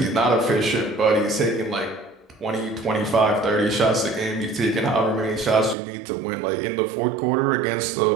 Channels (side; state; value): left; drops out; at 5.8 s